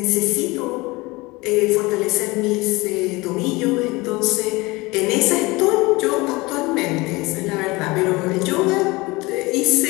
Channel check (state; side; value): quieter; right; 22.9 dB